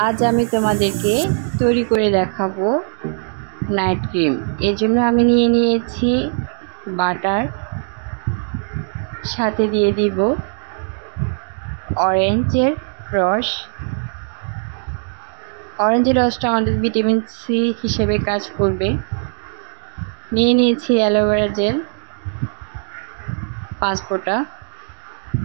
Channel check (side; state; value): left; silent; 59 dB below the other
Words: আজ আমি তোমাদেরকে তৈরি করে দেখাবো নাইট ক্রিম। এর জন্য আমি নিয়ে নিয়েছি বাটার, সাথে দিয়ে দিব অরেঞ্জের রস। অরেঞ্জের রসটা আমাদের ভিটামিন সি হিসেবে কাজ করবে। নিয়ে নিয়েছি অ্যালোভেরা জেল 5 ফোঁটা।